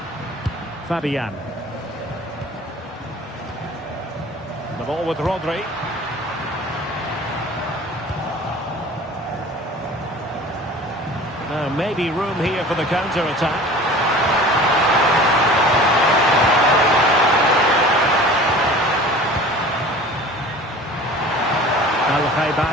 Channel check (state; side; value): normal; both; correlation 0.42